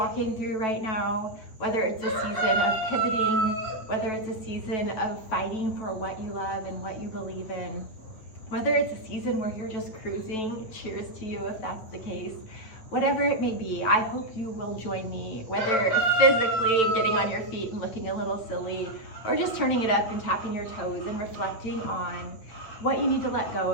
through right now, whether it's a season of pivoting, whether it's a season of fighting for what you love and what you believe in, whether it's a season where you're just cruising, cheers to you if that's the case. Whatever it may be, I hope you will join me, whether physically getting on your feet and looking a little silly, or just turning it up and tapping your toes and reflecting on what you need to let go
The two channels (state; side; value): late; right; 9.2 ms